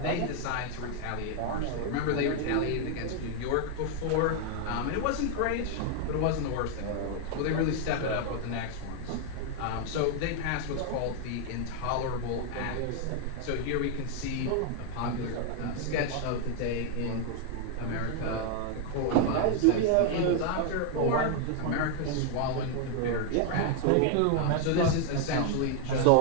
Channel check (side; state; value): both; different; correlation 0.00